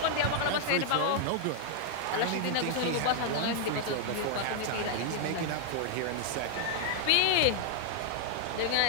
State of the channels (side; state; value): both; different; correlation 0.00